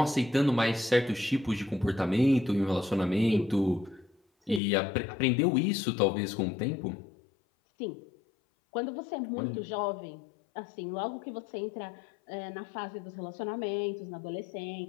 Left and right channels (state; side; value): drops out; right; at 4.6 s